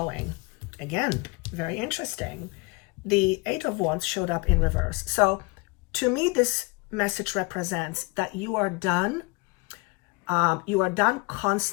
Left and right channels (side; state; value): right; quieter; 26.8 dB